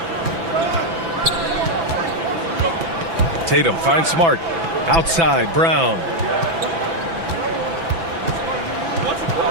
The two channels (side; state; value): left; late; 6.0 ms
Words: Tatum finds Smart. Outside, Brown.